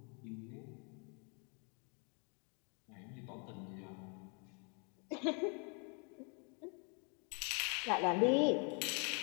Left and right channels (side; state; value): right; quieter; 36.7 dB